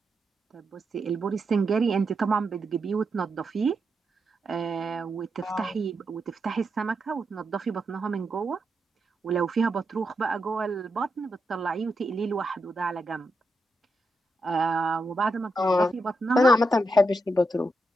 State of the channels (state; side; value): normal; both; correlation 0.85